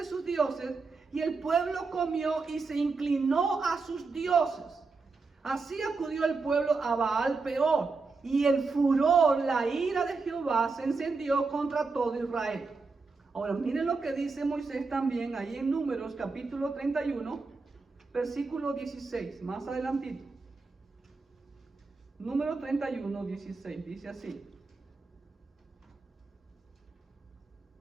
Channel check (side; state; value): left; quieter; 4.2 dB